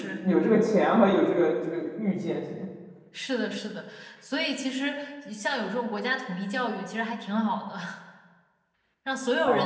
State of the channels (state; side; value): identical; both; correlation 1.00